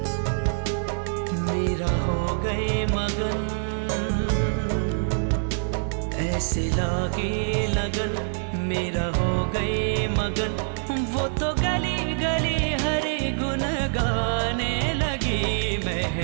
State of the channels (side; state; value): left; silent; digital silence